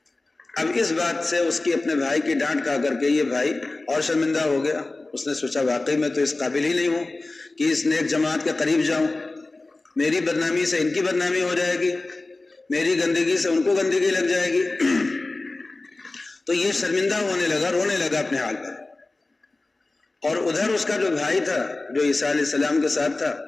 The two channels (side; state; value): right; quieter; 3.2 dB